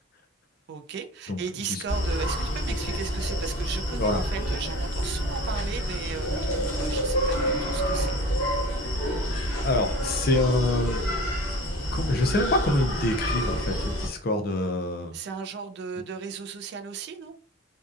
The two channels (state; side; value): normal; both; correlation 0.41